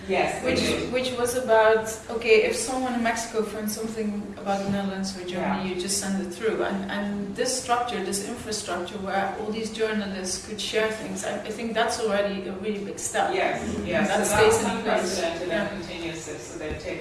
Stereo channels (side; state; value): both; identical; correlation 1.00